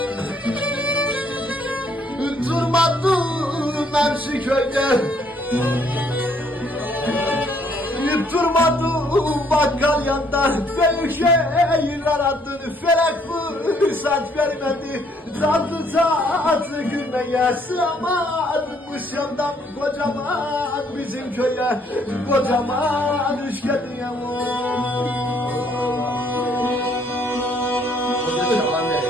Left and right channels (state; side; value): normal; both; correlation 0.66